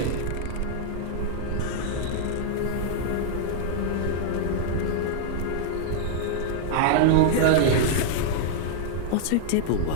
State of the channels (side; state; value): both; different; correlation -0.01